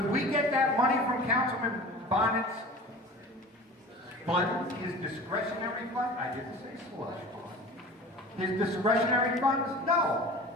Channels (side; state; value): both; normal; correlation 0.38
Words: we get that money from Councilman Bonin's fund, his discretionary fund? I didn't say slush fund. His discretionary funds? No.